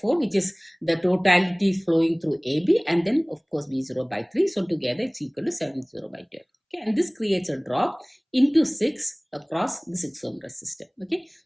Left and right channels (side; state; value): both; identical; correlation 1.00